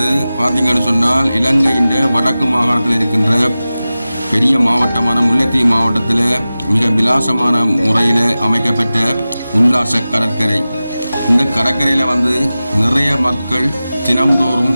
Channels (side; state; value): both; inverted; correlation -0.95